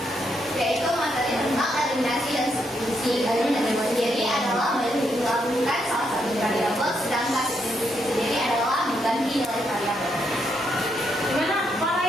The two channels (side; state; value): both; normal; correlation 0.78